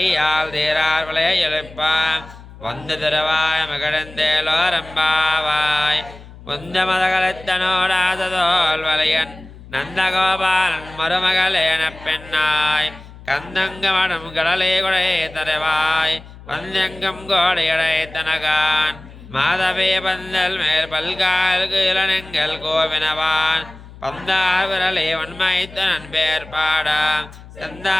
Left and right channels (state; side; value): noise; left; hum, 18 dB below the sound